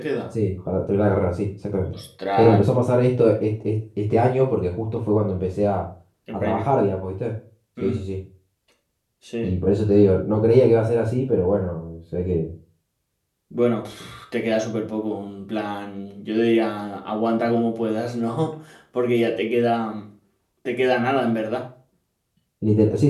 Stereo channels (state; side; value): identical; both; correlation 1.00